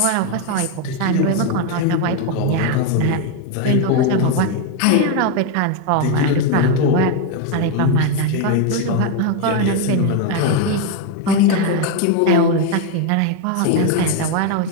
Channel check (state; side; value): different; both; correlation 0.01